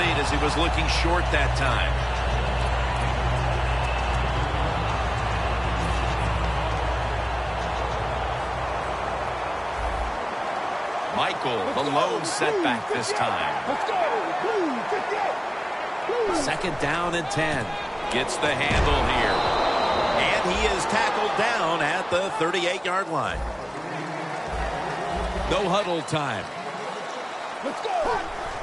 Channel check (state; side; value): identical; both; correlation 1.00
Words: as he was looking short that time. Michael, the lone setback this time. 2nd down and 10. Gets the handle here. And he is tackled down at the 38-yard line. No huddle time. Let's go!